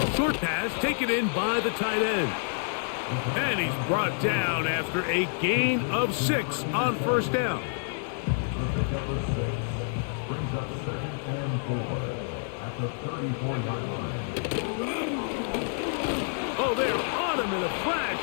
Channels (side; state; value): right; silent; digital silence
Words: Short pass taken in by the tight end. And he's brought down after a gain of 6 on 1st down. Oh, they're on him in a flash,